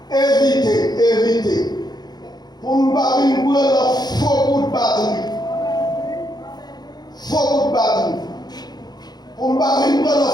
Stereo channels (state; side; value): late; right; 0.20 ms